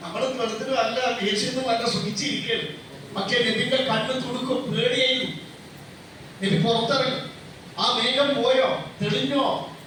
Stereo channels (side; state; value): both; identical; correlation 1.00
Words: വെള്ളത്തിനും അല്ല ദേഷ്യൊന്നും അല്ല സുഖിച്ചിരിക്കുകയാണ്. പക്ഷേ നബിന്റെ കണ്ണ് തുടുക്കും, പേടിയായിരുന്നു. നബി പുറത്തിറങ്ങി, ആ മേഘം പോയോ, തെളിഞ്ഞോ?